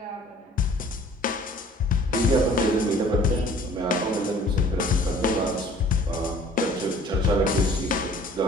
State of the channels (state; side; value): normal; both; correlation 0.52